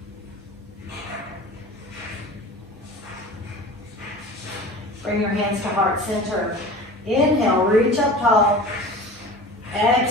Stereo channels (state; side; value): noise; right; hum, 27 dB below the sound